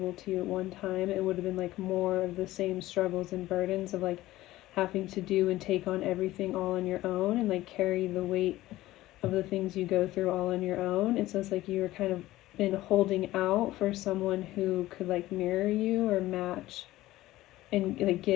to you at one time, it would have been like more of the same struggles and burdens of like having to do and take on everything all on your own, and like carry the weight of the things you go through all on your own. And so it's like you were kind of been holding out for someone who could like mirror you or match and like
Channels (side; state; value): right; quieter; 16.5 dB